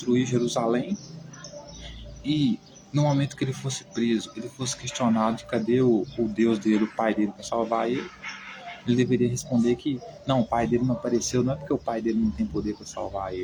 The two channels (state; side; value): identical; both; correlation 1.00